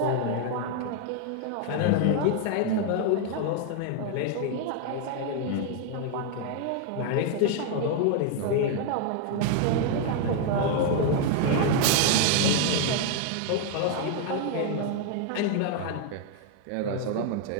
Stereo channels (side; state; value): both; different; correlation 0.00